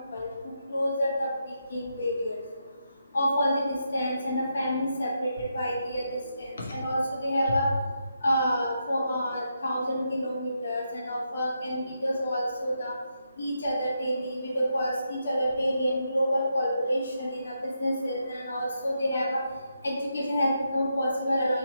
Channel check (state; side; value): inverted; both; correlation -0.83